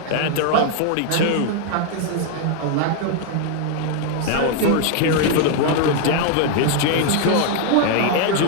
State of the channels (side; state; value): both; different; correlation 0.00